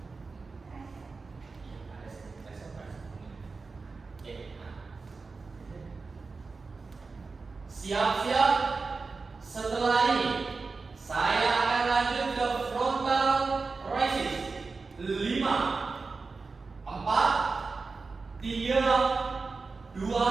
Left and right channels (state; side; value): quieter; left; 4.2 dB